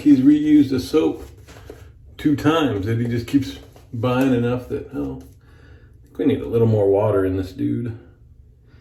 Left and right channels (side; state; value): both; identical; correlation 1.00